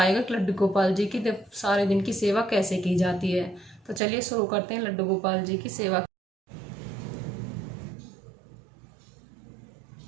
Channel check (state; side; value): drops out; left; at 4.0 s